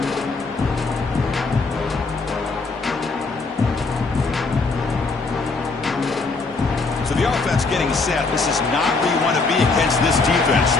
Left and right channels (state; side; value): quieter; right; 3.9 dB